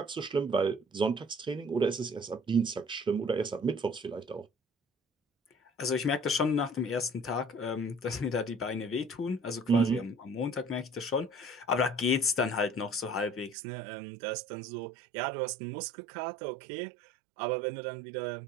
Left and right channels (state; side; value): drops out; left; at 13.6 s